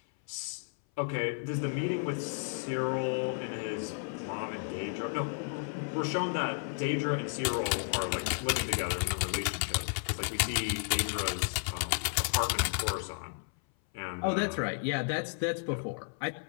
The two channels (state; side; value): silent; right; 56 dB below the other